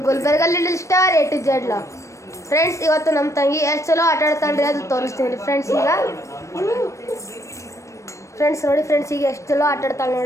Gulbarga little star A to Z log. Friends, ಇವತ್ತು ನಮ್ಮ ತಂಗಿ ಎಷ್ಟು ಚಲೋ ಆಟ ಆಡ್ತಾಳ್ರಿ ಅದು ತೋರಿಸ್ತೀನಿ ಫ್ರೆಂಡ್ಸ್. ಈಗ ಫ್ರೆಂಡ್ಸ್ ನೋಡಿ, ಫ್ರೆಂಡ್ಸ್ ಈಗ ಎಷ್ಟು ಚಲೋ ಆಟ ಆಡ್ತಾಳೆ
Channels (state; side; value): late; right; 0.15 ms